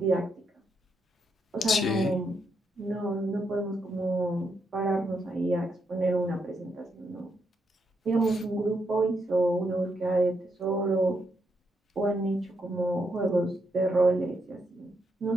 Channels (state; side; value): normal; both; correlation 0.80